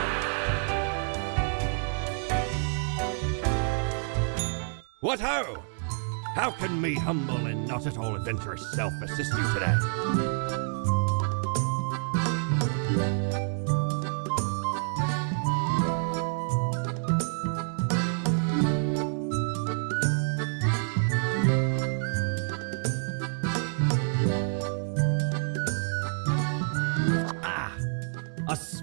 What ho! How can me humble and not at all adventurous self assist you today? Ah, a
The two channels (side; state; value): left; silent; 59 dB below the other